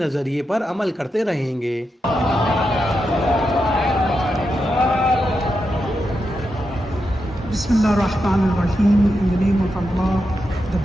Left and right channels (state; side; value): normal; both; correlation 0.86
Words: پر عمل کرتے رہیں گے. بسم اللہ الرحمن الرحیم. In the name of Allah, the